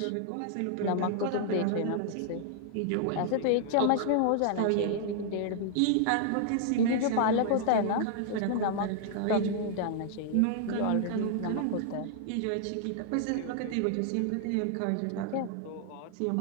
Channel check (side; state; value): both; different; correlation -0.01